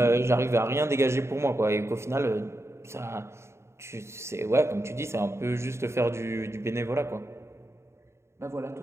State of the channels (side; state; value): left; late; 0.13 ms